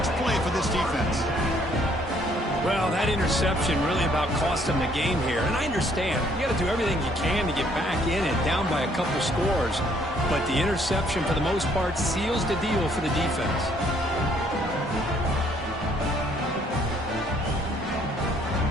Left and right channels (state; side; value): normal; both; correlation 0.65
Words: play for this defense. Well, that interception really about cost them the game here. And I understand. You got to do everything you can to get back in and down by a couple scores. But the interception, for the most part, seals the deal for the defense.